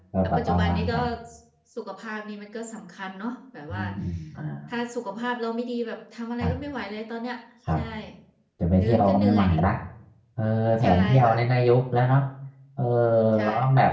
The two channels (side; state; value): both; identical; correlation 1.00